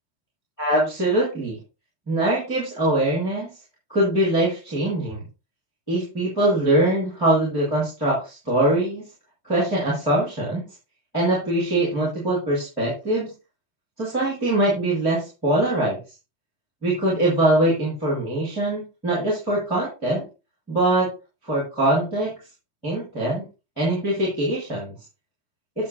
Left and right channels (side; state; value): right; late; 3.2 ms